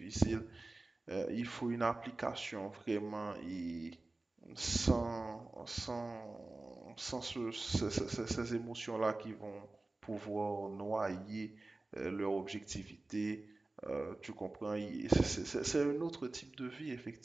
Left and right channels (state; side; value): quieter; left; 3.0 dB